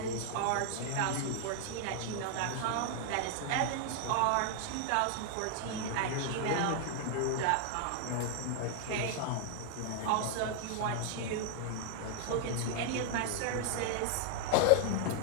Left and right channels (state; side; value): different; both; correlation 0.00